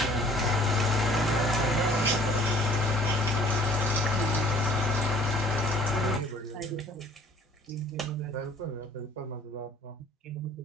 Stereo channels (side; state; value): both; normal; correlation 0.55